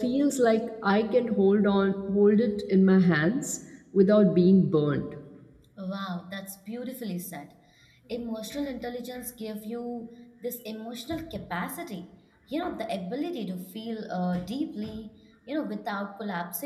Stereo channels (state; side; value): identical; both; correlation 1.00